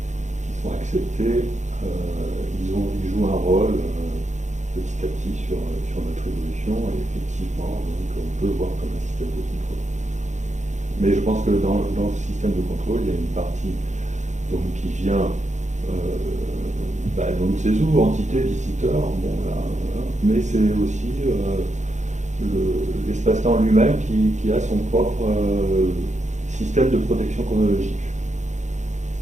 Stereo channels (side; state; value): left; late; 0.34 ms